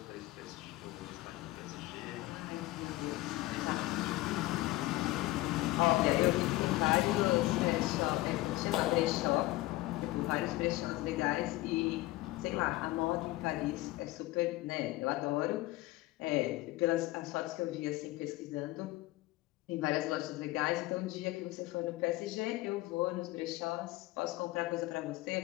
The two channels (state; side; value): quieter; right; 18.5 dB